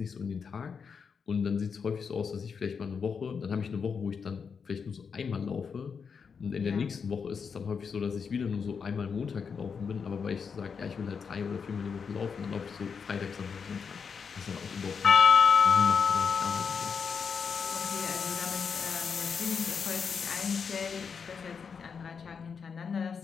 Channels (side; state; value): right; quieter; 6.1 dB